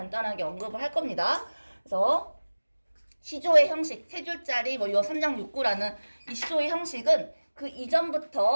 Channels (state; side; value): inverted; both; correlation -1.00